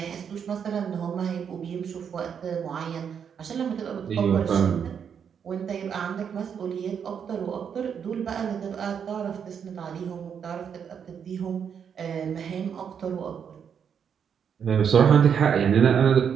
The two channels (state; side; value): quieter; left; 7.5 dB